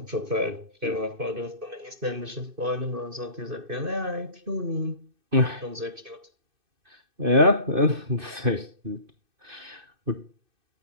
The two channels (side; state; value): left; late; 2.6 ms